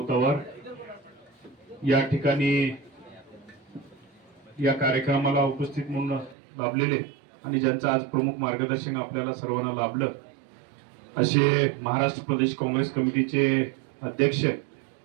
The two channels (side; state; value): left; drops out; at 6.4 s